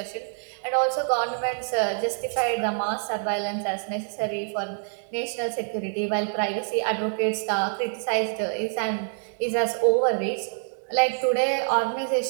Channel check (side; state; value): left; silent; digital silence